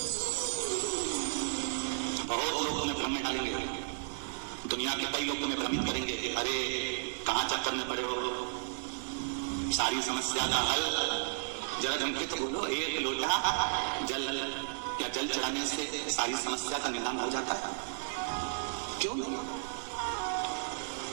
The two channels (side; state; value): left; silent; digital silence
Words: बहुत लोग तुम्हें भ्रम में डालेंगे, दुनिया के कई लोग तुम्हें भ्रमित करेंगे, अरे कहां चक्कर में पड़े हो, सारी समस्या का हल जरा जम के तो बोलो, एक लोटा जल या जल चढ़ाने से सारी समस्या का निदान हो जाता है, क्यों नहीं?